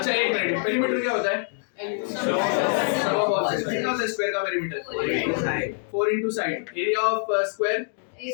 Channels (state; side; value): silent; right; digital silence